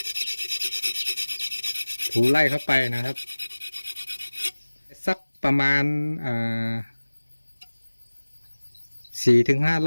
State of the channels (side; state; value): both; inverted; correlation -1.00